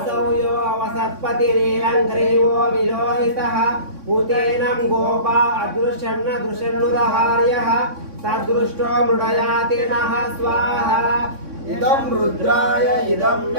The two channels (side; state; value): left; late; 3.6 ms